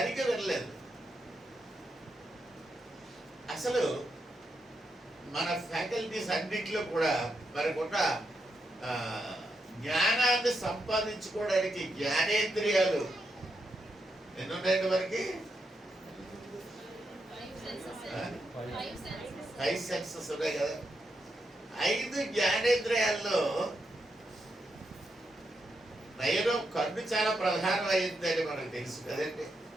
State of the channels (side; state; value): both; normal; correlation 0.83